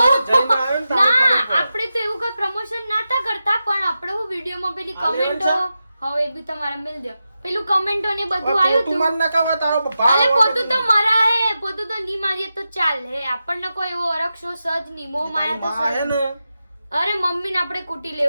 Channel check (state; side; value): inverted; both; correlation -0.91